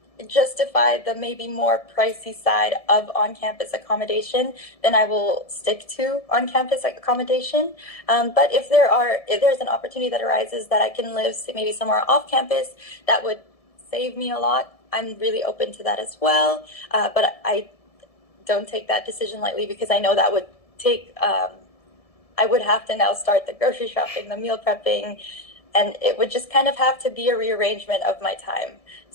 justify the maybe more pricey side of on-campus accommodation, then I will stick to on-campus accommodation. But if there's an opportunity that arises that I can live maybe somewhere off-campus that would save me a lot, I'm really open to that as well. But I don't take that decision lightly, because I know that would take, I would have to now start the grocery shopping, the meal prepping, and it would just kind of have to be a rearrangement of my time.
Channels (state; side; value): late; right; 1.7 ms